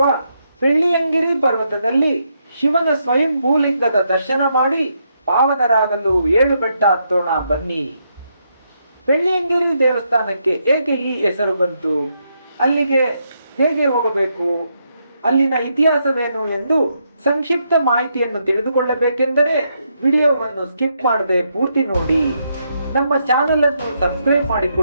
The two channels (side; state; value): both; inverted; correlation -0.79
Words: ಬೆಳ್ಳಿಯಂಗಿರಿ ಪರ್ವತದಲ್ಲಿ ಶಿವನ ಸ್ವಯಂ ಭೂಲಿಂಗದ ದರ್ಶನ ಮಾಡಿ ಪಾವನರಾಗಲು 7 ಬೆಟ್ಟ ಹತ್ತೋಣ ಬನ್ನಿ. ಬೆಳ್ಳಿಯಂಗಿರಿ ದೇವಸ್ಥಾನಕ್ಕೆ ಏಕೆ ಈ ಹೆಸರು ಬಂತು, ಅಲ್ಲಿಗೆ ಹೇಗೆ ಹೋಗಬೇಕು, ಅಲ್ಲಿನ ಇತಿಹಾಸವೇನು ಎಂದು ಸಂಕ್ಷಿಪ್ತ ಮಾಹಿತಿಯನ್ನು ತಿಳಿದುಕೊಳ್ಳಬೇಕೆಂದರೆ ವಿಡಿಯೋವನ್ನು ಸ್ಕಿಪ್ ಮಾಡದೆ ಪೂರ್ತಿ ನೋಡಿ. ನಮ್ಮ ಚಾನೆಲ್ ಅನ್ನು ಸಬ್ಸ್ಕ್ರೈಬ್